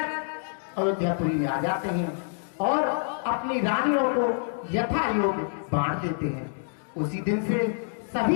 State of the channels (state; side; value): silent; right; digital silence